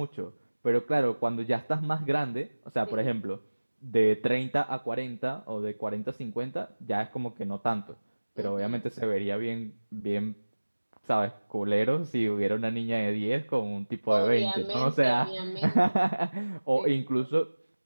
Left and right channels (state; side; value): inverted; both; correlation -1.00